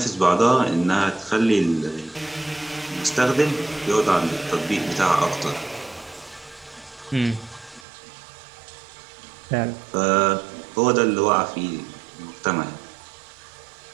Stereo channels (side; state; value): left; drops out; at 7.9 s